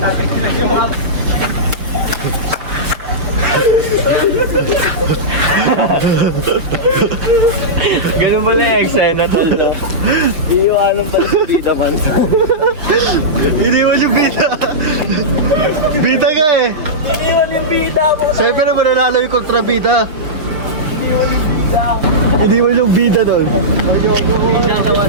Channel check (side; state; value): left; late; 6.1 ms